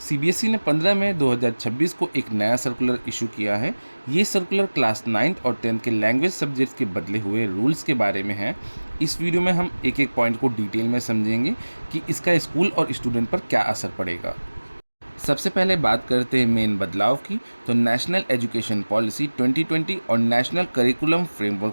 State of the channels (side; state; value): both; inverted; correlation -1.00